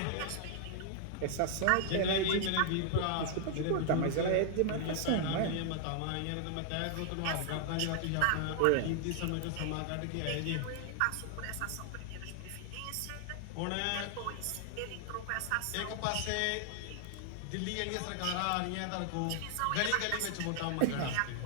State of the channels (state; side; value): different; both; correlation 0.00